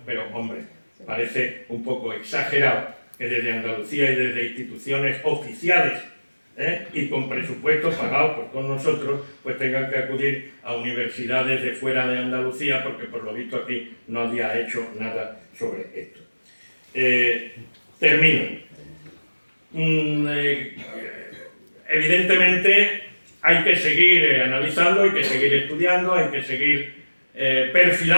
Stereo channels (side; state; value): both; inverted; correlation -1.00